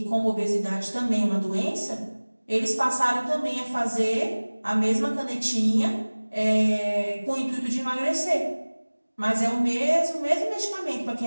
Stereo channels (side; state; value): both; inverted; correlation -1.00